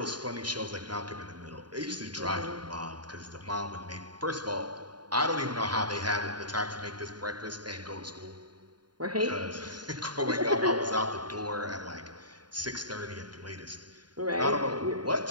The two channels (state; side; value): late; left; 0.70 ms